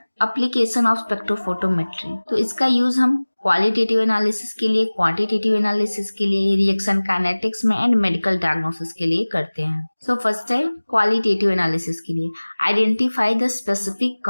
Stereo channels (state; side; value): inverted; both; correlation -1.00